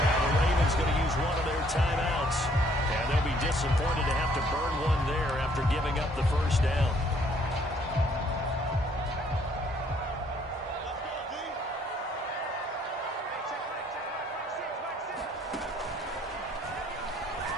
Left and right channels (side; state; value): both; normal; correlation 0.64